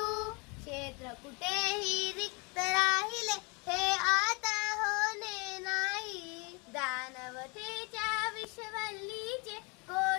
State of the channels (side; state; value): right; quieter; 30.4 dB